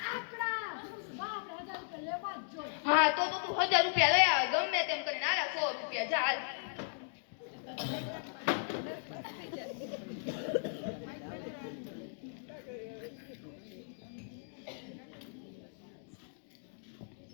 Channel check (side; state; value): right; silent; digital silence